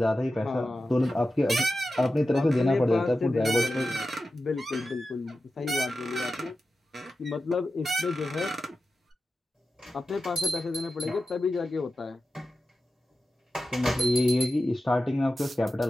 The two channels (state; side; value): normal; both; correlation 0.93